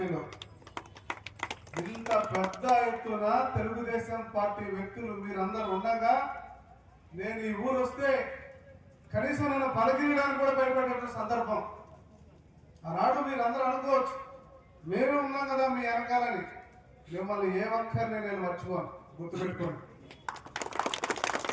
ఇంత పెద్ద ఎత్తున తెలుగుదేశం పార్టీ వ్యక్తులు మీరందరూ ఉండగా నేను ఈ ఊరు వస్తే కనీసం నన్ను పలకరియడానికి కూడా భయపడే సందర్భం. ఆనాడు మీరందరూ అనుకోవచ్చు మేము ఉన్నాం కదా మీ వెనకాలని. మిమ్మల్ని ఏ ఒక్కరిని నేను మర్చిపోను, గుర్తుపెట్టుకోండి.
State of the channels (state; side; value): identical; both; correlation 1.00